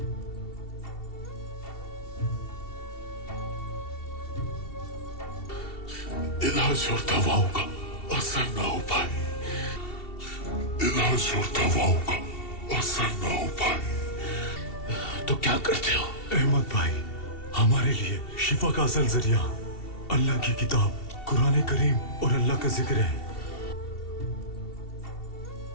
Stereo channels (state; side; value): late; right; 2.7 ms